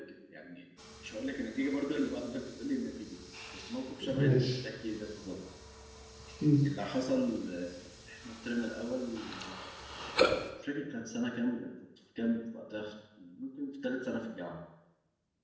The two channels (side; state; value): both; identical; correlation 1.00